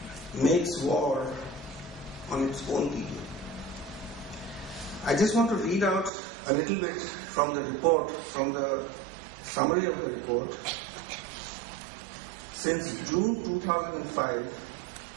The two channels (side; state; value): left; drops out; at 6.1 s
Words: Makes War on Its Own People." I just want to read out a little bit from the report, from the summary of the report. Since June 2005,